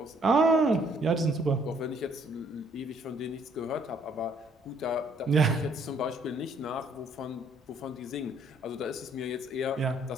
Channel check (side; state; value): both; normal; correlation 0.65